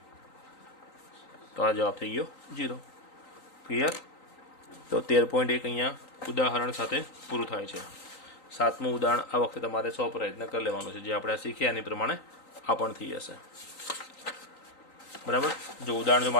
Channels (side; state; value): right; late; 3.9 ms